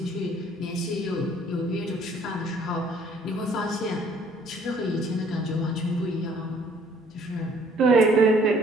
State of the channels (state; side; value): normal; both; correlation 0.59